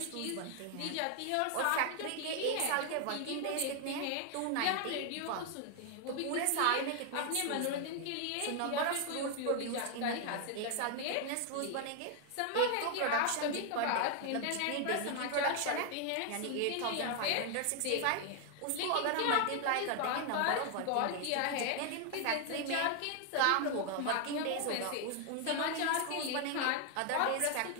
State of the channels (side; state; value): both; different; correlation 0.00